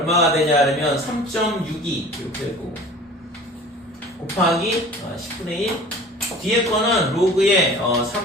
되냐 그러면 3.62 이렇게 될 거고 곱하기 10분의 1 뒤에 거는 로그의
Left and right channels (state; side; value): normal; both; correlation 0.43